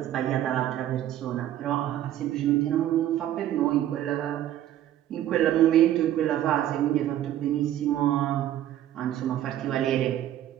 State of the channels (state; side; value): quieter; left; 12.2 dB